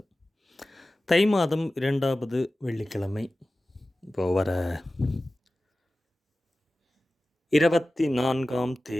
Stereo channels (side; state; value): both; normal; correlation 0.96